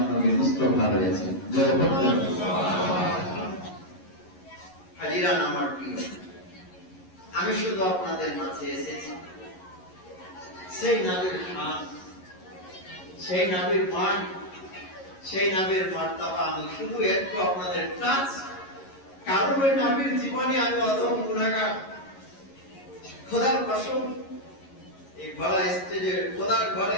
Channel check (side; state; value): right; late; 11 ms